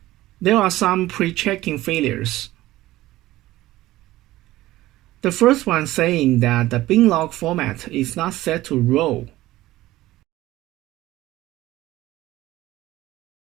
There are some pre-checking failures. The first one saying that the bin log format is not set to row.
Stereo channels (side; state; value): left; quieter; 16.5 dB